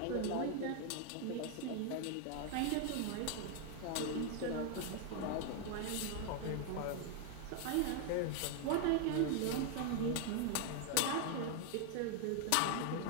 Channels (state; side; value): different; both; correlation 0.00